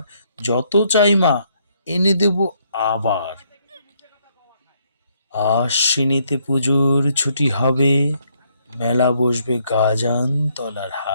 যত চাই মা এনে দেব আবার। আশ্বিনেতে পুজোর ছুটি হবে, মেলা বসবে গাজান তলার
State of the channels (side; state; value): both; inverted; correlation -0.71